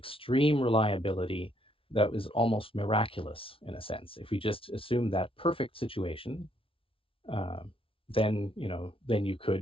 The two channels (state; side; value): late; right; 0.26 ms